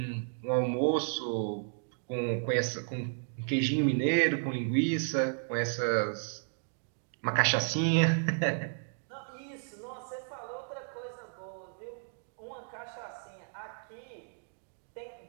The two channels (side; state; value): left; silent; digital silence